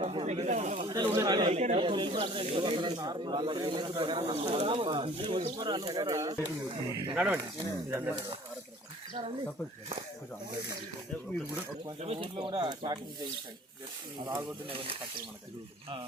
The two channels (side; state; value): both; normal; correlation 0.50